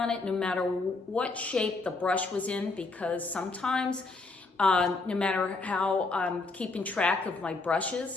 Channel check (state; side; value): quieter; right; 3.6 dB